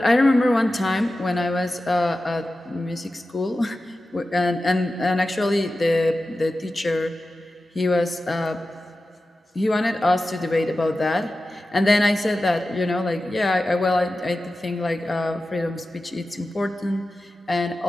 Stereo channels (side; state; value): both; normal; correlation 0.94